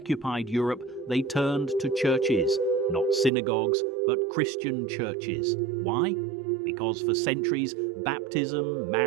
Europe, they turned to churches, not synagogues, but Christian churches. Why? Because for centuries, baptism,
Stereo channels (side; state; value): left; drops out; at 3.3 s